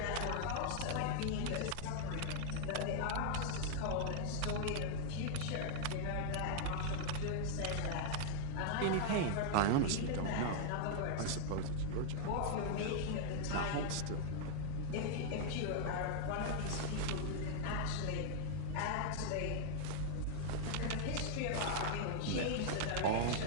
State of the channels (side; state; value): both; different; correlation 0.00